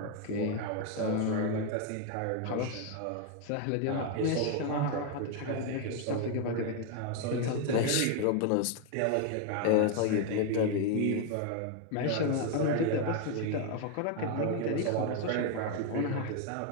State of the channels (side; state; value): both; different; correlation 0.01